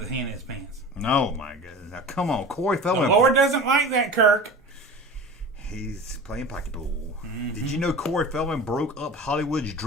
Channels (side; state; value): both; normal; correlation 0.35